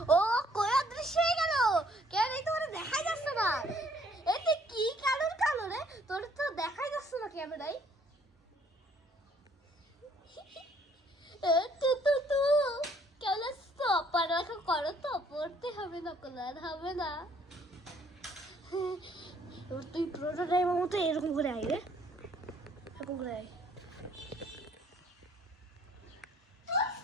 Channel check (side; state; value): both; normal; correlation 0.62